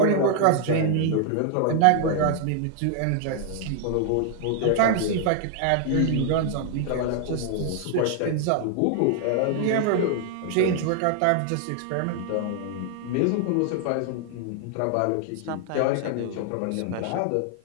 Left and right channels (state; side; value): different; both; correlation 0.00